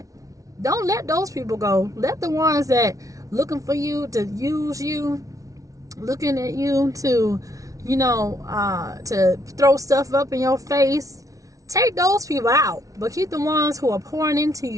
Don't let those people go. Let the ones that looking for you to use you, looking at you to, you know, to throw stuff up in your face, take those people out. But keep the ones who are pouring into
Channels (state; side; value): late; left; 0.17 ms